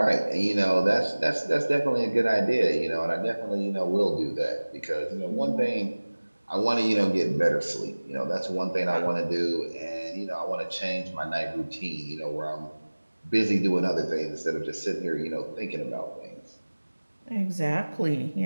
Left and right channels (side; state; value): both; inverted; correlation -1.00